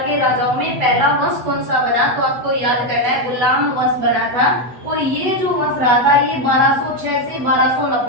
के राजाओं में पहला वंश कौन सा बना, तो आपको याद करना है गुलाम वंश बना था। और ये जो वंश रहा था ये 1206 से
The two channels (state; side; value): late; left; 8.1 ms